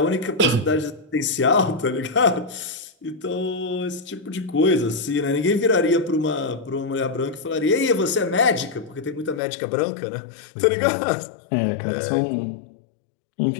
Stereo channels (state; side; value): drops out; right; at 9.4 s